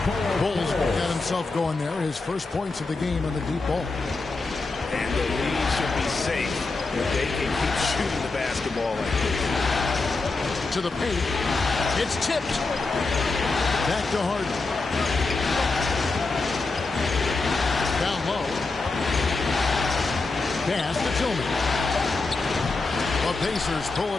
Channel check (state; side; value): quieter; right; 3.7 dB